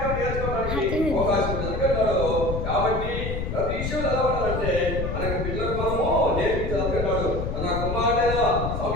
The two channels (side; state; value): left; noise; rumble, 3 dB below the sound